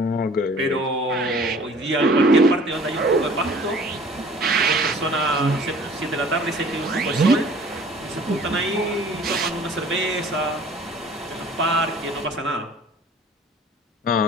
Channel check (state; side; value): normal; both; correlation 0.50